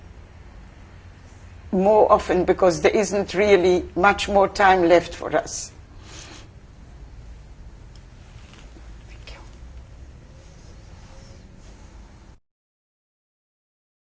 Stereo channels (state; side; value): identical; both; correlation 1.00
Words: more often, because there isn't really much more time left for us.